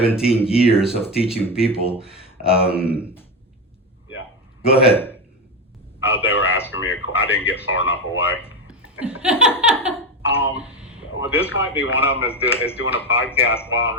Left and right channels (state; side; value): normal; both; correlation 0.15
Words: years of teaching people. Yeah. Go ahead. They were asking me, I didn't get far enough away. Well, this might be one of them is doing a podcast while I'm